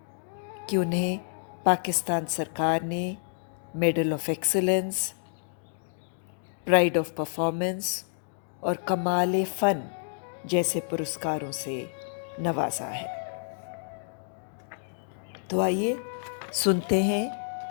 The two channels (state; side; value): silent; right; digital silence